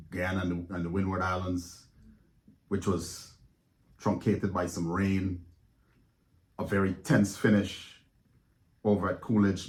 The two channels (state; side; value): identical; both; correlation 1.00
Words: Guyana and the Windward Islands, which was truncated by some rain. A very tense finish over at